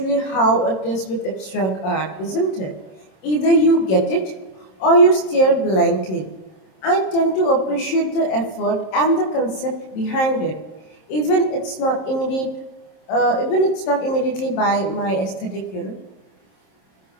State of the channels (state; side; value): late; right; 27 ms